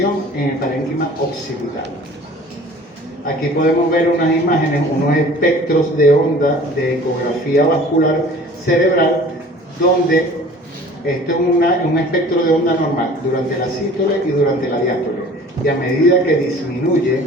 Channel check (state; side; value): normal; both; correlation 0.46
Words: en el parénquima occipital. Aquí podemos ver unas imágenes, unos espectros de onda de ecografía vascular cerebral, donde esto es un espectro de onda normal durante la sístole y durante la diástole. Y a medida que disminuye